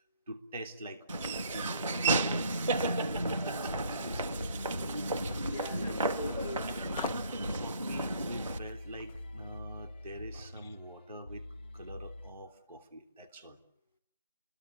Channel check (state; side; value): inverted; both; correlation -0.61